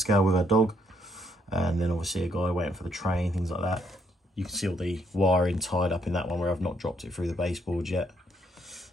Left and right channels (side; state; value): both; normal; correlation 0.72